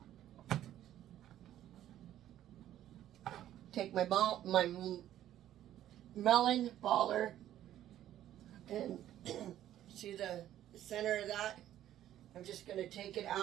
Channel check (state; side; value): quieter; left; 12.2 dB